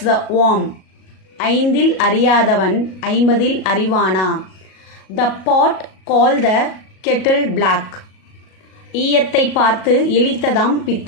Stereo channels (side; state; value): right; late; 37 ms